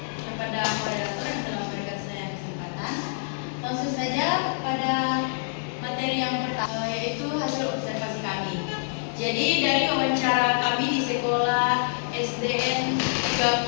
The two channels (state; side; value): silent; right; digital silence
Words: kepada moderator yang telah memberikan saya kesempatan. Langsung saja pada materi yang pertama, yaitu hasil observasi kami. Jadi dari wawancara kami di sekolah SDN